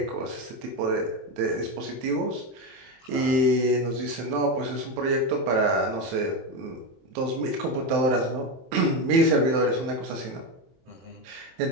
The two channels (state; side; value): late; left; 23 ms